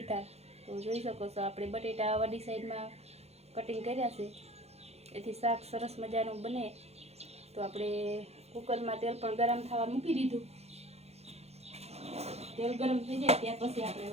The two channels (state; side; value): late; left; 0.31 ms